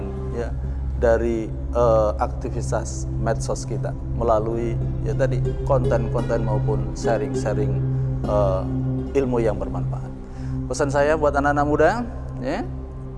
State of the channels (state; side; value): identical; both; correlation 1.00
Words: ya dari aktivitas medsos kita melalui ya tadi konten-konten maupun sharing-sharing ilmu yang bermanfaat. Pesan saya buat anak-anak muda ya,